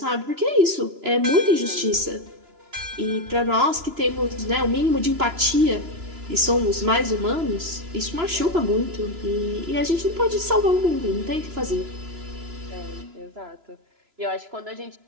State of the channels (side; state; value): left; late; 2.9 ms